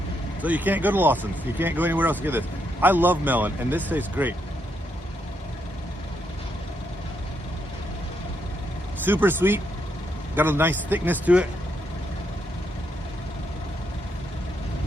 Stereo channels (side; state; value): both; normal; correlation 0.78